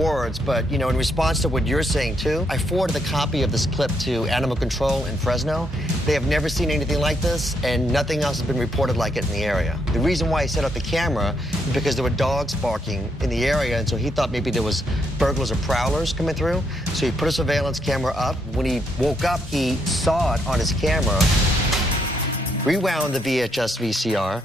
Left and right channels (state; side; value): normal; both; correlation 0.76